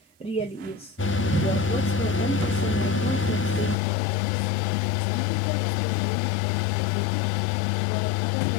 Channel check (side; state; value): right; drops out; at 3.8 s